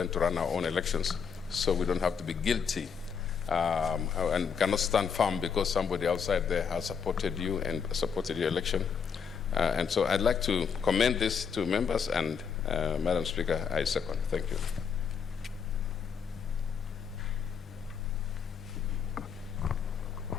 to run our own elections, so we don't have to be guilty and cannot stand firm because somebody outside there has supported you and supported your election. And so I'd like to commend this to members, and Madam Speaker, I second. Thank you.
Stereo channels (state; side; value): quieter; right; 6.6 dB